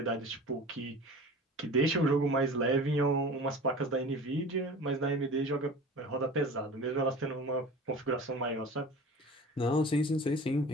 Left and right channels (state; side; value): normal; both; correlation 0.38